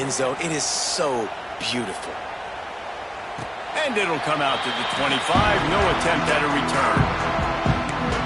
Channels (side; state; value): both; identical; correlation 1.00